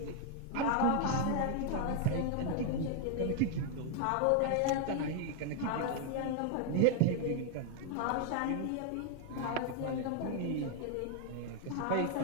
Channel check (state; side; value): different; both; correlation 0.00